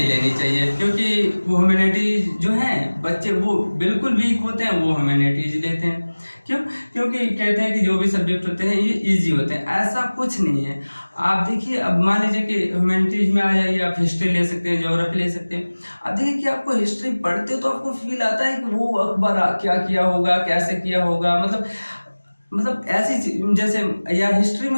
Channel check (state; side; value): inverted; both; correlation -1.00